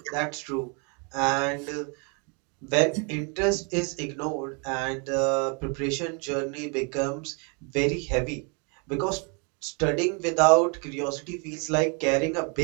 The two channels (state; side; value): quieter; left; 35.0 dB